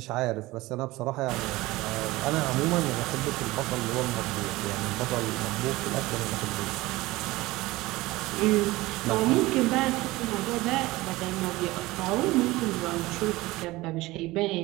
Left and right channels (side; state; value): left; quieter; 19.6 dB